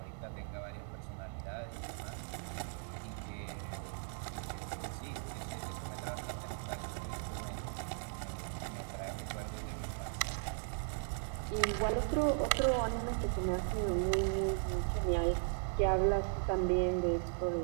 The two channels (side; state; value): left; silent; 53 dB below the other